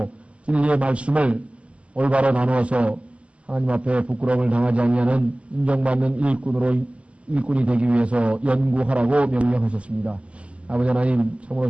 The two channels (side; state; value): left; late; 0.060 ms